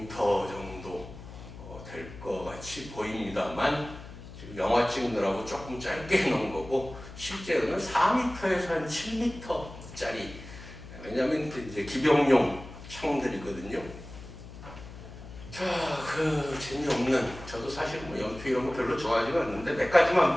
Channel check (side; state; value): left; noise; hum, 14 dB below the sound